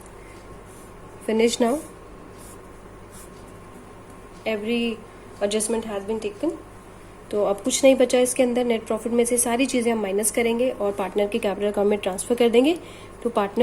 finish now, every adjustment has been taken. तो अब कुछ नहीं बचा इसके अंदर। नेट प्रॉफिट में से सारी चीज़ें हम माइनस करेंगे और पार्टनर के कैपिटल अकाउंट में ट्रांसफर कर देंगे। तो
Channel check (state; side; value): identical; both; correlation 1.00